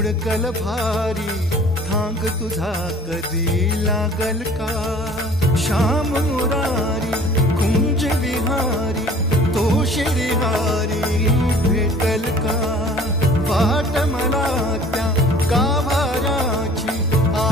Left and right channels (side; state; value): both; normal; correlation 0.49